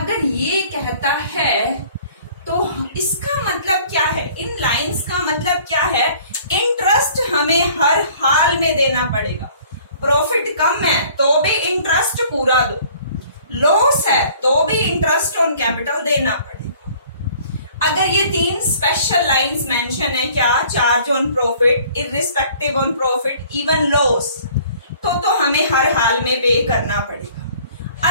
ये कहता है तो इसका मतलब क्या है, इन लाइंस का मतलब क्या है, इंटरेस्ट हमें हर हाल में देना पड़ेगा. प्रॉफिट कम है तो भी इंटरेस्ट पूरा दो, लॉस है तो भी इंटरेस्ट ऑन कैपिटल देना पड़ेगा. अगर ये तीन स्पेशल लाइंस मेंशन है, क्या, charge on profit, irrespective on profit, even loss, तो हमें हर हाल में पे करना पड़ेगा.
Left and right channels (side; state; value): both; inverted; correlation -0.54